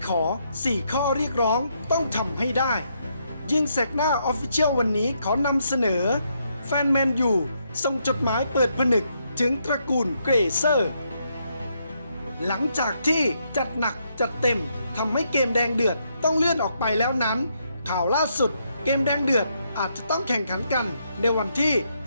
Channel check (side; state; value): both; inverted; correlation -0.76